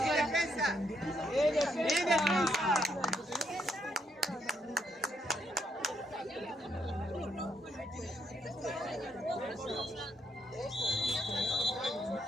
defensa! ¡Bien defensa!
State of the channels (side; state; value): both; normal; correlation 0.75